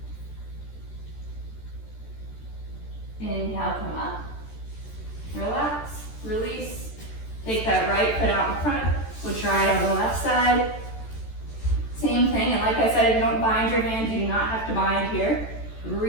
Inhale, come up, relax, release, take that right foot out in front, we'll try it on the left side. Same thing, and like I said, if you don't bind your hands, you do not have to bind here.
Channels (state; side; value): late; right; 14 ms